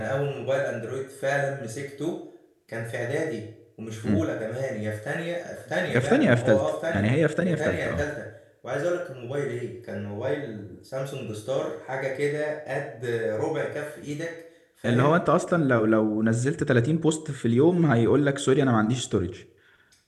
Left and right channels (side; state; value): both; identical; correlation 1.00